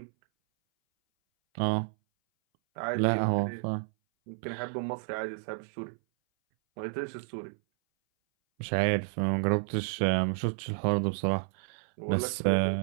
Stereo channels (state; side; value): silent; left; 57 dB below the other